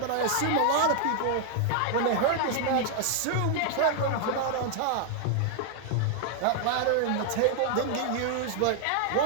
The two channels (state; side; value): different; both; correlation 0.00